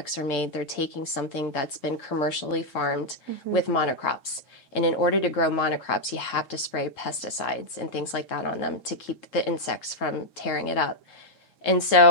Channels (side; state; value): right; late; 3.7 ms